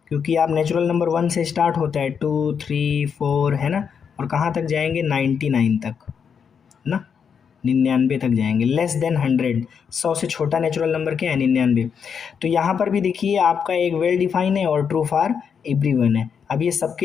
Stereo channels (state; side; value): quieter; right; 6.9 dB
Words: क्योंकि आप नेचुरल नंबर 1 से स्टार्ट होता है, 2 3 4 है ना, और कहाँ तक जाएंगे 99 तक ना, 99 तक जाएंगे। लेस देन 100, 100 से छोटा नेचुरल नंबर क्या है, 99। तो यहाँ पर भी देखिए आपका एक वेल डिफाइन है और ट्रू फॉर एवरीवन है। अब ये